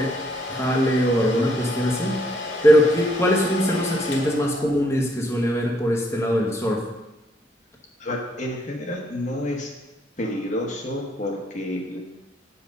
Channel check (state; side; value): normal; both; correlation 0.70